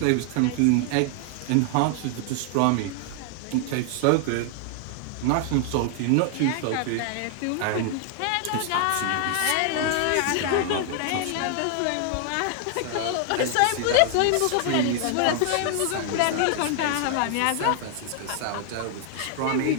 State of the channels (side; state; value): both; different; correlation 0.00